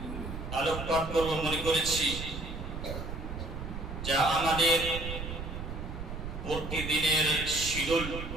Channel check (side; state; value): right; noise; rumble, 7 dB below the sound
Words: আলোকপাত করব মনে করেছি যা আমাদের প্রতিদিনের শিডিউল